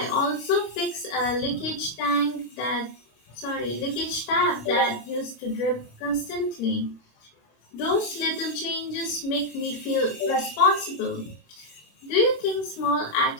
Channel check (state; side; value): late; right; 26 ms